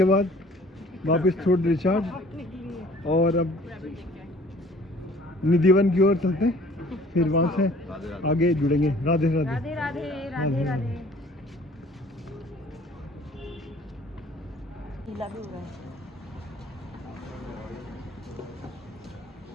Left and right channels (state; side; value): normal; both; correlation 0.53